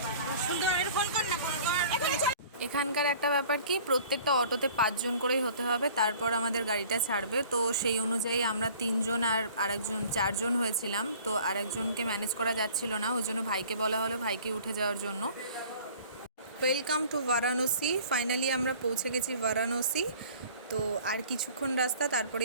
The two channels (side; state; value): both; inverted; correlation -0.49